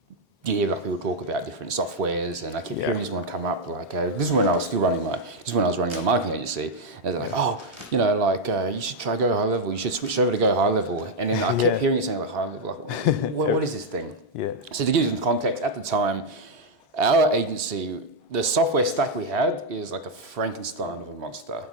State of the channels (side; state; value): both; normal; correlation -0.01